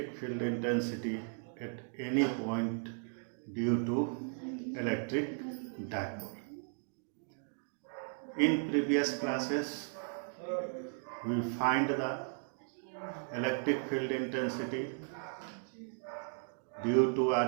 field intensity at any point due to electric dipole. In previous classes, we find the electric field intensity due to a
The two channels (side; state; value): left; silent; 54 dB below the other